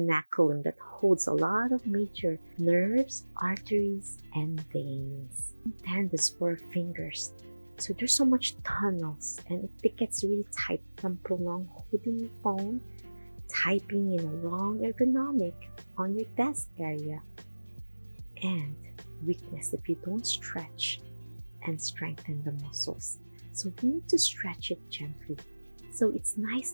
that holds a lot of major nerves, arteries, and veins. Tendons for fingers. So there's so much tunnels, and if it gets really tight from prolonged holding your phone, typing in a wrong ergonomic on your desk area, and weakness if you don't stretch and strengthen the muscles. So we need to stretch it gently. So it's nice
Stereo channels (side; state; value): both; inverted; correlation -1.00